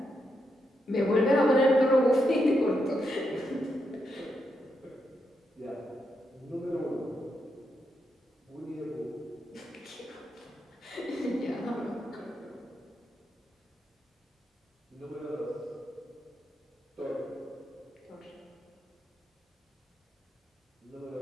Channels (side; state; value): both; normal; correlation 0.82